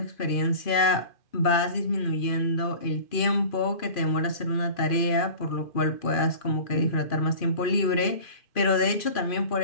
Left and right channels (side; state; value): right; late; 2.4 ms